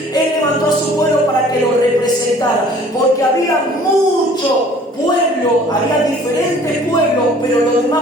Él levantó a su pueblo para que lo representara, porque había mucho pueblo, había diferentes pueblos, pero los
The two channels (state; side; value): normal; both; correlation 0.52